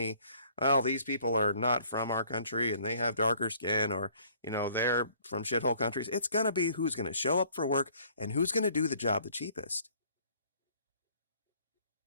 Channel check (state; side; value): inverted; both; correlation -0.59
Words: well, these people are not from our country and they have darker skin, or, they're from shithole countries. It's going to be who's going to show up for work and who's going to do the job the cheapest.